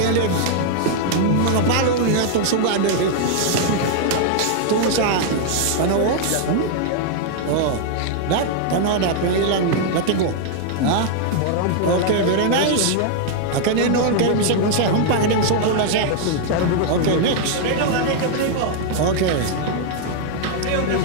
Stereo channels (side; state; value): both; different; correlation 0.00